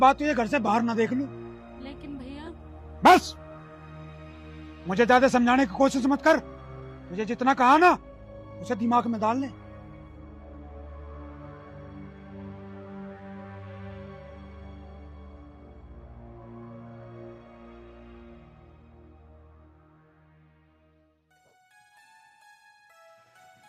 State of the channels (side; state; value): both; identical; correlation 1.00